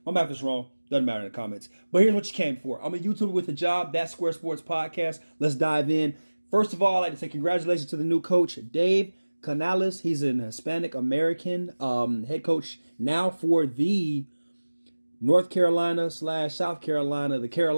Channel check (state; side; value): inverted; both; correlation -1.00